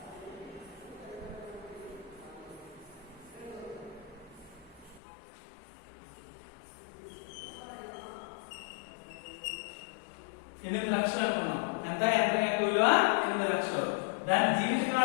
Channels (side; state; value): right; drops out; at 5.0 s